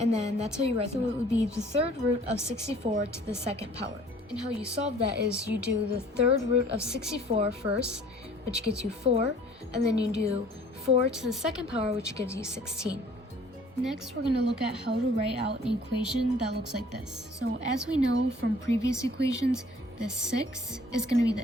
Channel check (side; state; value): both; normal; correlation 0.53